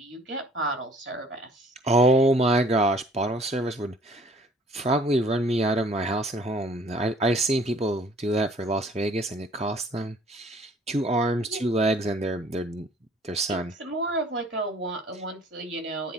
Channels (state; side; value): normal; both; correlation 0.55